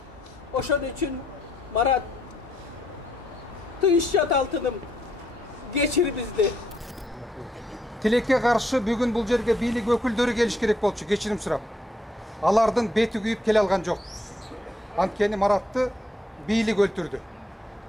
Oşon üçün Marat, tıyışçat altınım, geçir bizdi. Тилекке каршы бүгүн бул жерге бийлик өкүлдөрү келиш керек болчу, кечирим сурап. Алардын бети күйүп келе алган жок. Анткени Маратты бийлик өлтүрдү.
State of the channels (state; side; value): normal; both; correlation 0.74